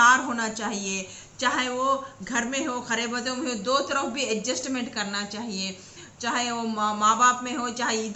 होना चाहिए, चाहे वो घर में हो, खरे बदों में हो, दो तरफ भी एडजस्टमेंट करना चाहिए, चाहे वो माँ बाप में हो, चाहे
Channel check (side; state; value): both; identical; correlation 1.00